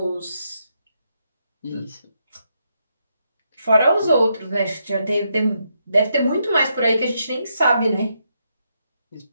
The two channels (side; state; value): both; inverted; correlation -0.80